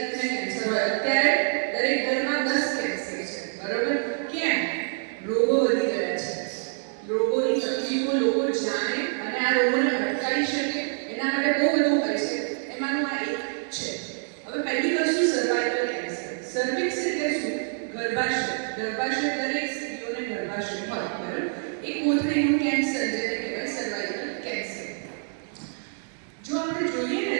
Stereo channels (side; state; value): left; silent; 61 dB below the other